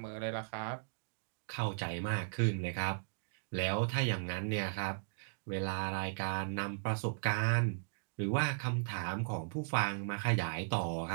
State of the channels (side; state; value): left; silent; digital silence